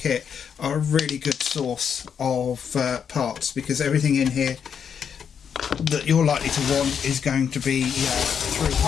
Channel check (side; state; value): right; quieter; 7.5 dB